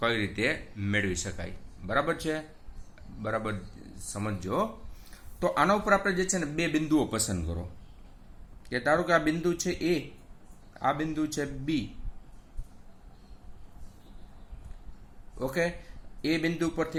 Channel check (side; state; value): both; identical; correlation 1.00